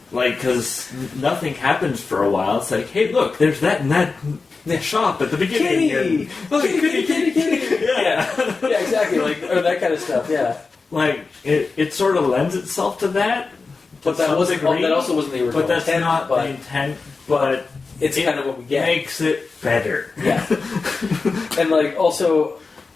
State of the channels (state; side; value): quieter; right; 4.3 dB